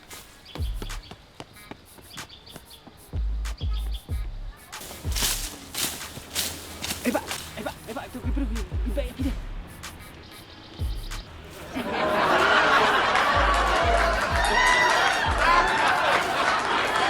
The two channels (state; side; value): identical; both; correlation 1.00